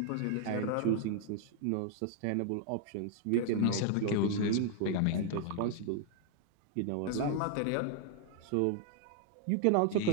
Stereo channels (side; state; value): both; different; correlation 0.00